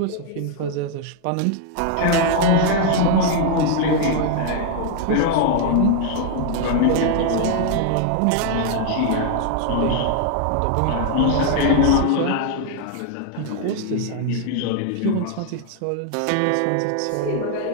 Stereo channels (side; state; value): both; different; correlation 0.00